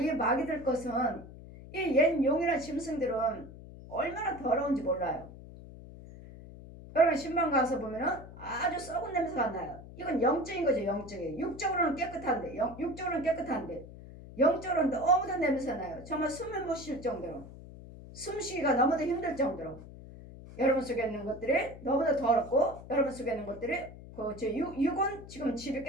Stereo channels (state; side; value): noise; left; hum, 15 dB below the sound